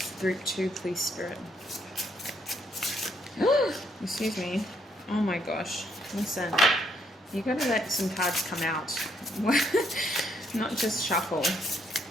Group 2, please, Spirit. Excuse me. Oh my gosh. Listen, you gotta let some cards come out. Not just shuffle.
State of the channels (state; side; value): normal; both; correlation 0.72